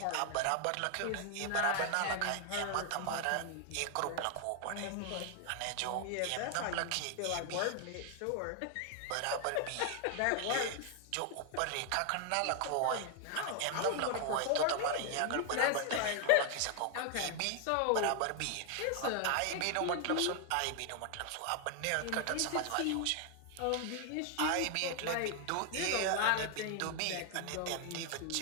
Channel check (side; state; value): both; different; correlation 0.00